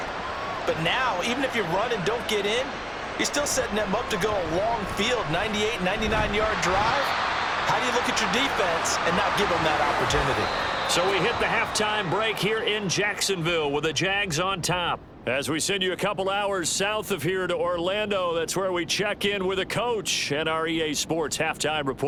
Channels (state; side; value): identical; both; correlation 1.00